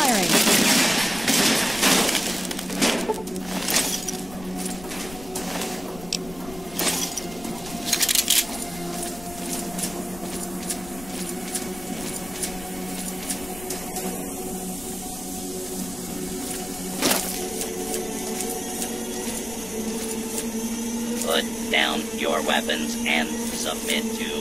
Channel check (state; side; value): noise; left; rumble, 15 dB below the sound